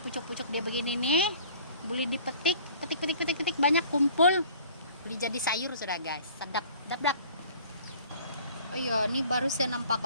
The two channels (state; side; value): inverted; both; correlation -0.50